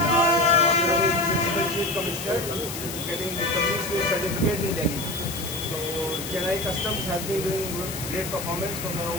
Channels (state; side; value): noise; left; hiss, 8 dB below the sound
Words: our Honorable Principal Chief Commissioner is getting the company's certificate in Delhi. So Chennai Customs has been doing great performance from